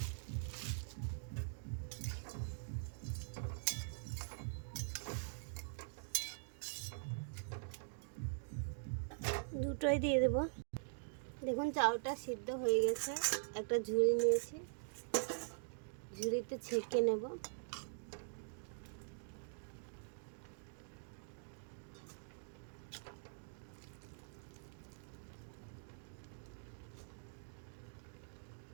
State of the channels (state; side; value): silent; left; digital silence